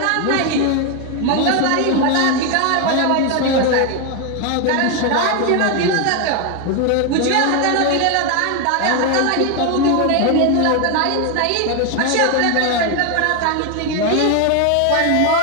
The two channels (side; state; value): both; different; correlation 0.01